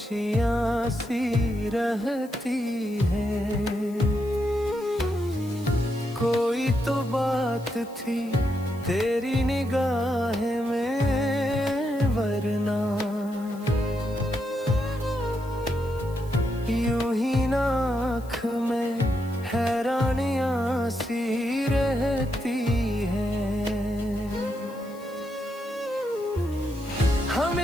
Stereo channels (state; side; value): noise; left; hiss, 24 dB below the sound